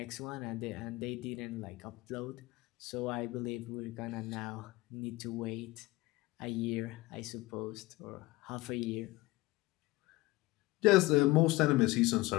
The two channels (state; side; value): quieter; right; 20.5 dB